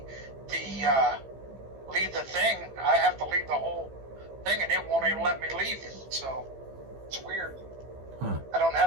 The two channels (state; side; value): late; left; 15 ms